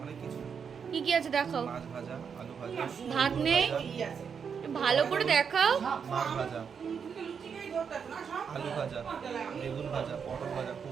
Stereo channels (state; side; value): quieter; left; 6.7 dB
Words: অনেক কিছু। কি কি আছে দেখাও। মাছ ভাজা, আলু ভাজা, ভাত নেই, কি আছে? ভালো করে দেখাও। মাছ ভাজা, তুমি লুচি খাই ধরতে না সব? আলু ভাজা, বেগুন ভাজা, পটল ভাজা,